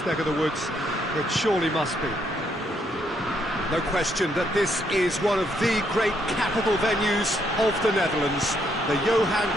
neck of the woods. It surely must be. No question that this is one of the great capital venues of the Netherlands, the Johan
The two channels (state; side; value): normal; both; correlation 0.73